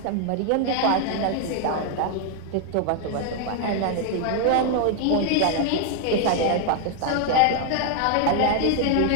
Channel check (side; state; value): both; different; correlation 0.00